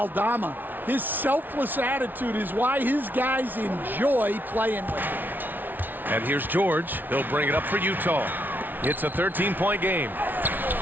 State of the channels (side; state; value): left; late; 0.087 ms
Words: His selfless attitude is why his guys enjoy playing with him. And here's George. He'll bring it up for Utah. It's a 13-point game.